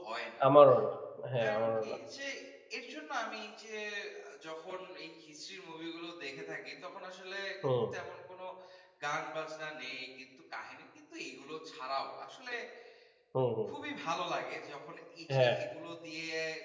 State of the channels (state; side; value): identical; both; correlation 1.00